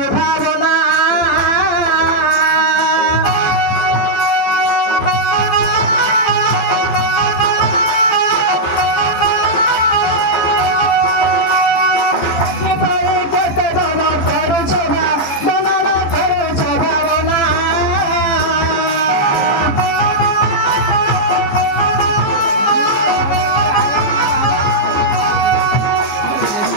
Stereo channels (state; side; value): late; right; 15 ms